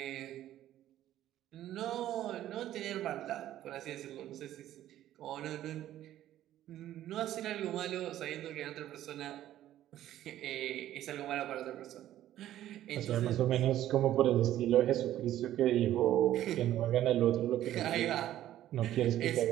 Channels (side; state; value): left; quieter; 12.9 dB